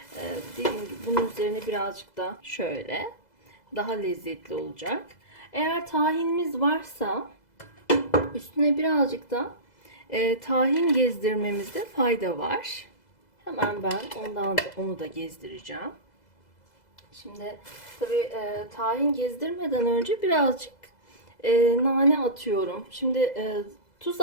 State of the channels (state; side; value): late; right; 2.0 ms